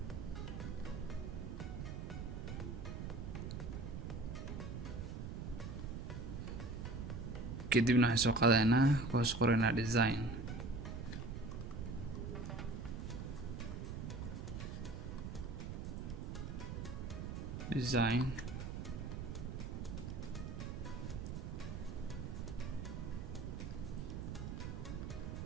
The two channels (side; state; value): right; noise; rumble, 5 dB below the sound